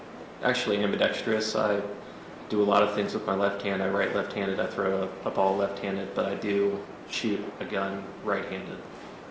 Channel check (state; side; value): identical; both; correlation 1.00